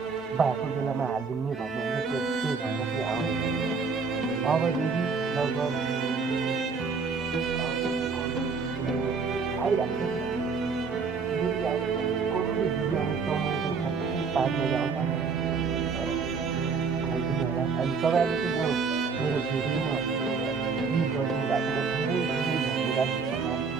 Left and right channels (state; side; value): quieter; left; 5.0 dB